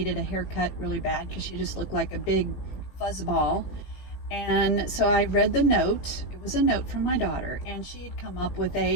a haircut really bad because she just looked like a big fuzzball. And so I read the note. It was a note from my daughter, and she had come up with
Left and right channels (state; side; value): late; right; 18 ms